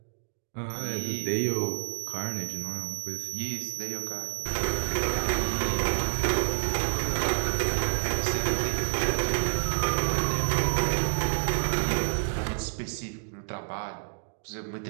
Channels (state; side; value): silent; left; digital silence